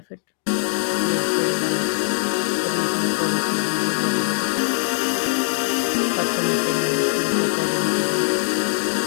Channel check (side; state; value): right; silent; digital silence